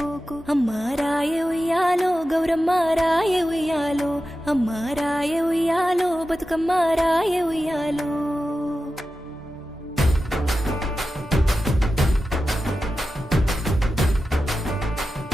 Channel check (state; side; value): normal; both; correlation 0.92